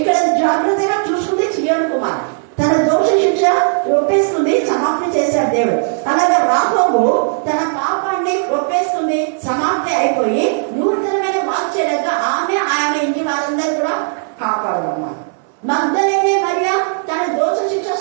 జాగ్రత్తగా చూసుకుంది సీయోను కుమార్. తన దోష శిక్ష ఒప్పేసుకుంది, సమాప్తి చేశాడు దేవుడు. అలాగే రాహోబు తన పాపాన్ని ఒప్పేసుకుంది, సమాప్తి అయిపోయి నూతనమైన వాక్యలుగా ఆమె ఇంటి వారందరూ కూడా కాపాడమన్నారు. మగ్దలేనే మరియా తన దోష శిక్ష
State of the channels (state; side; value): silent; left; 69 dB below the other